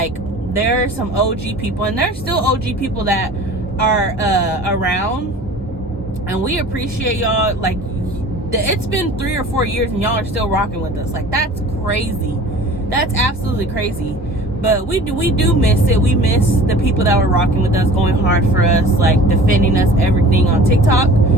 there are some OG people, and there's still OG people that are around, and we appreciate y'all. Like, it's been 3 or 4 years and y'all are still rocking with us. Like, that's crazy. That's absolutely crazy. But we do miss it. We miss the people that were rocking with us, going hard for us, like defending us, everything on TikTok.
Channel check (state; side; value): normal; both; correlation 0.43